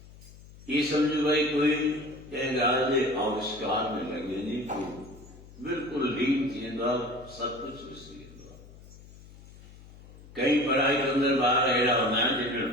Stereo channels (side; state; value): left; noise; hum, 20 dB below the sound